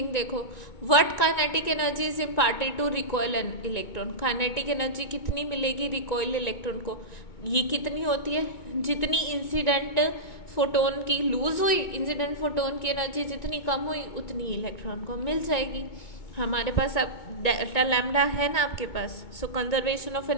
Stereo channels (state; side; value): late; right; 2.2 ms